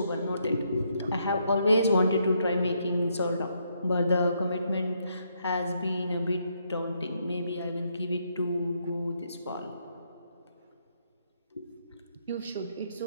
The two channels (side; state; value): both; inverted; correlation -0.75